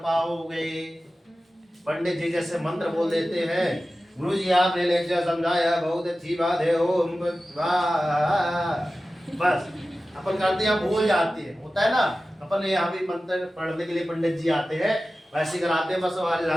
पाओगे। पंडित जी जैसे मंत्र बोल देते हैं, गुरु जी आपने लेक्चर समझाया बहुत अच्छी बात है, ओम बस अपन करते हैं, भूल जाते हैं, होता है ना। अपन यहाँ भी मंत्र पढ़ने के लिए पंडित जी आते हैं, वैसे कराते हैं, बस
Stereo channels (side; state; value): both; normal; correlation 0.95